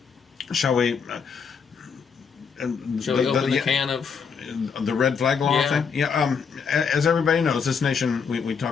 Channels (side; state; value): right; quieter; 6.1 dB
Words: Shall we... Shall we open the can of... The red flag law thing? Yeah. As everybody knows, this nation, we